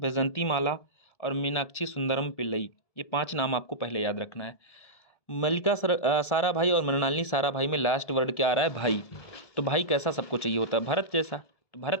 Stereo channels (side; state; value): right; late; 1.7 ms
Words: माला और मीनाक्षी सुंदरम पिल्लई, ये 5 नाम आपको पहले याद रखना है। मल्लिका साराभाई और मृणालिनी साराभाई में लास्ट वर्ड क्या आ रहा है? भाई। तो भाई कैसा सबको चाहिए होता है? भरत जैसा। तो